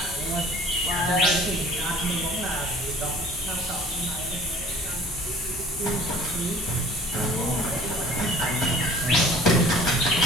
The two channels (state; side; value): normal; both; correlation 0.49